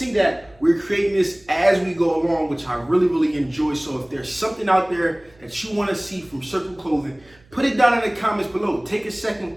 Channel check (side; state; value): right; noise; hum, 30 dB below the sound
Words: that we're creating this as we go along, which I really enjoy. So if there's something out there that you wanna see from Circle Clothing, put it down in the comments below. Take a second,